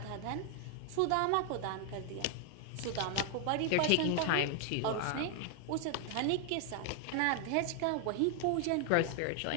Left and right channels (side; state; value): both; different; correlation 0.00